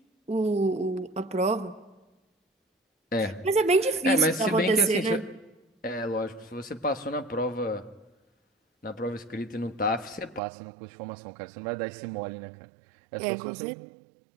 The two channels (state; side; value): drops out; left; at 10.4 s